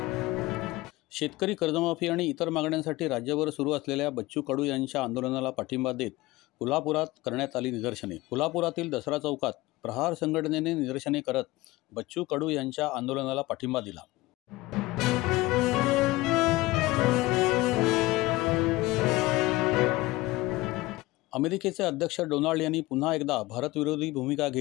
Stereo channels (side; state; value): right; quieter; 19.8 dB